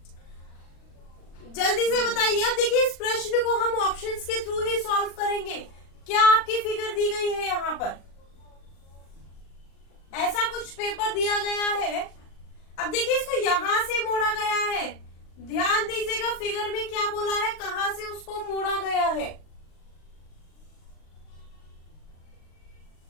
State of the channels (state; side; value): late; right; 39 ms